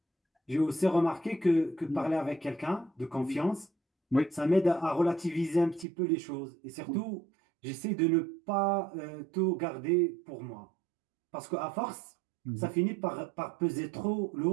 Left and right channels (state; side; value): drops out; left; at 5.9 s